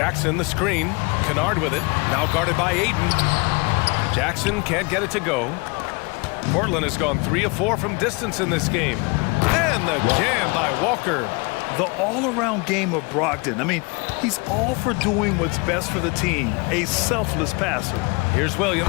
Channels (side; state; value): right; quieter; 28.5 dB